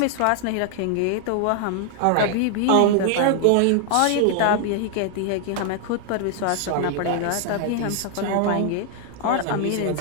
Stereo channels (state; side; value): different; both; correlation 0.00